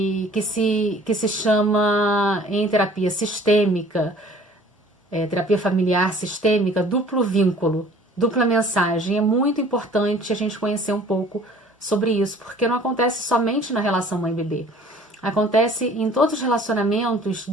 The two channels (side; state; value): both; normal; correlation 0.51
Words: que se chama em terapia sistêmica, terapia familiar sistêmica, duplo vínculo, dupla mensagem. É muito importante a gente conhecer um pouco sobre isso, porque não acontece somente na relação mãe-bebê. Acontece em todos os relacionamentos